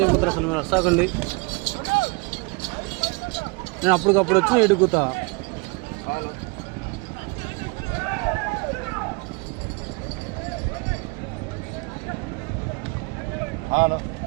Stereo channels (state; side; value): quieter; left; 29.7 dB